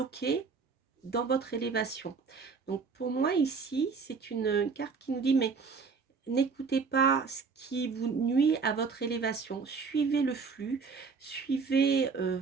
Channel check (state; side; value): quieter; left; 5.1 dB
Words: dans votre élévation. Donc pour moi ici, c'est une carte qui nous dit, mais n'écoutez pas ce qui vous nuit à votre élévation. Suivez le flux, suivez